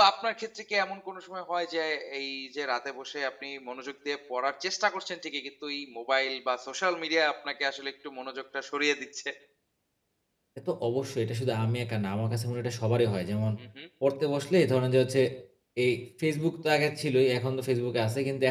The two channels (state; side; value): identical; both; correlation 1.00